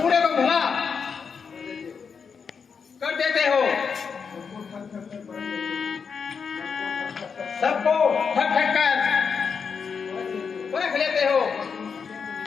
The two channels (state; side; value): quieter; right; 5.9 dB